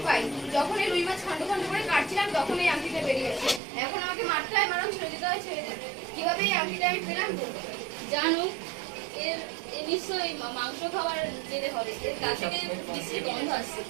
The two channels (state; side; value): drops out; left; at 3.6 s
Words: পাই। যখন এই রুই মাছ খন্ড খন্ড করে কাটছিলাম তখন এই আংটিটা বেরিয়ে গেছে। এখন আমাকে মারতে হয়, মারণ ছেড়ে দিতে হয়, ছেড়ে দিতে হয়। কিভাবে এই আংটিটা আমি পেলাম জানো? এর নিশ্চয়ই মাংস খাওয়ার জেনে হবে, এর গা থেকে বিশ্রী গন্ধ আসছে।